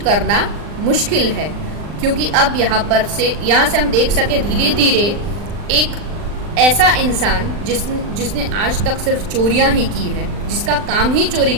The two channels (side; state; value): left; late; 39 ms